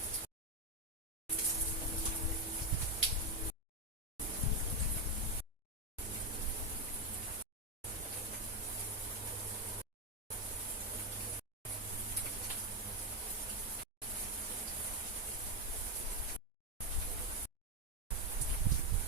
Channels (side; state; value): both; normal; correlation 0.06